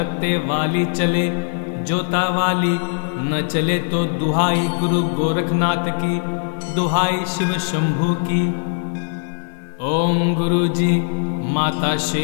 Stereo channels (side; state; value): right; silent; digital silence